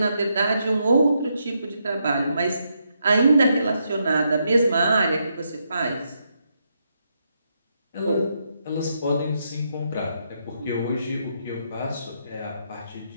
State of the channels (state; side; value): inverted; both; correlation -0.80